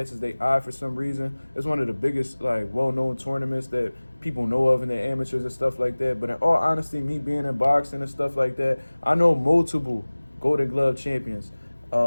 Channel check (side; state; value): both; inverted; correlation -1.00